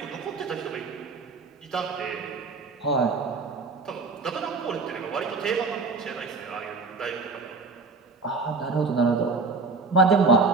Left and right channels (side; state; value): left; quieter; 4.0 dB